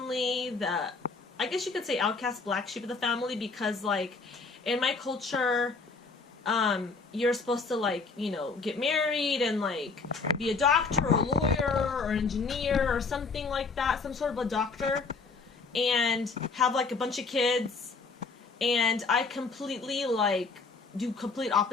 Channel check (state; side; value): quieter; right; 4.3 dB